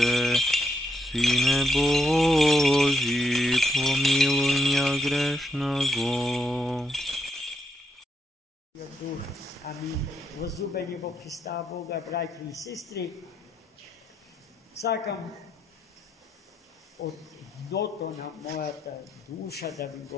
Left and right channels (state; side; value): normal; both; correlation 0.80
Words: Сине Божий, помилуй меня грешного. Амин. Возлюбени во Христа Бога, братья и сестры, сакам от дното на моята душа да ви